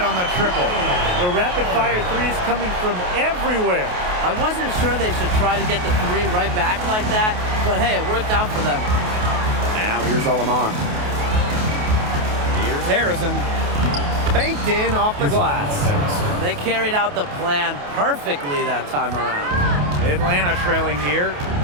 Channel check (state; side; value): late; left; 28 ms